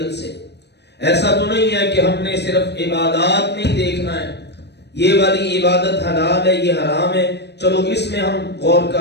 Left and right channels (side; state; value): right; late; 0.49 ms